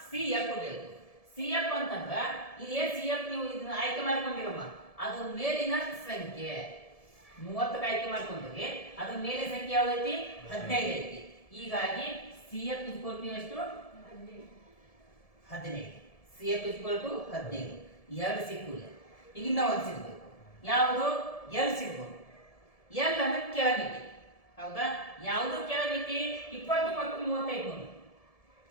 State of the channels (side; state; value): right; late; 1.7 ms